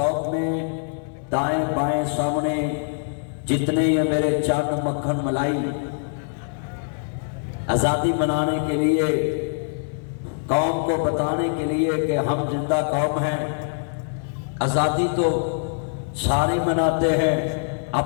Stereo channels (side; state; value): right; silent; digital silence